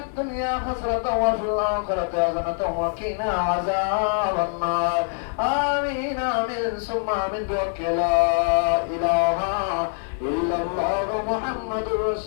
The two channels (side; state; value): right; silent; 63 dB below the other